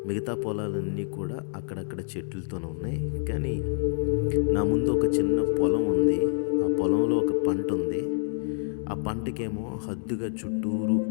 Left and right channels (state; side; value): silent; right; digital silence